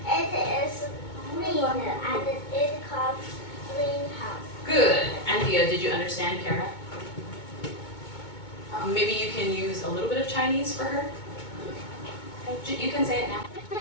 It is green and it called greenhouse. Good. Anthea, did you understand Kara? Maybe you can use a little bit of Chinese for her? You can say it now.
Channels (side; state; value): right; late; 2.2 ms